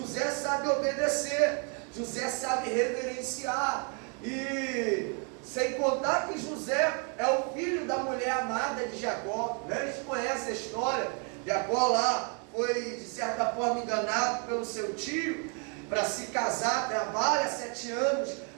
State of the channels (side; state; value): left; quieter; 37.3 dB